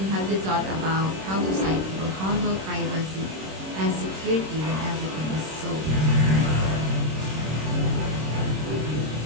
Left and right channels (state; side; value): late; left; 26 ms